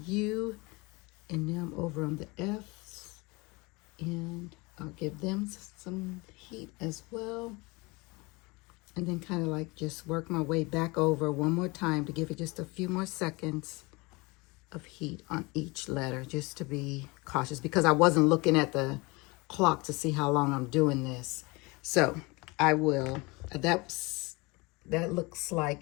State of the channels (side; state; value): right; quieter; 25.3 dB